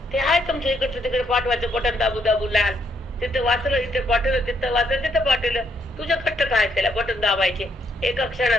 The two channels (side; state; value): both; normal; correlation 0.73